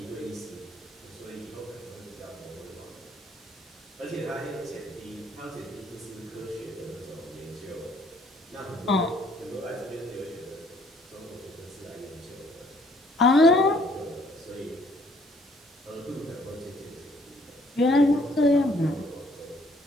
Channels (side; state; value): both; normal; correlation 0.63